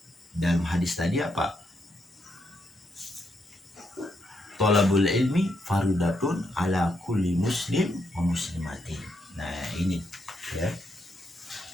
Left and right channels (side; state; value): both; normal; correlation 0.79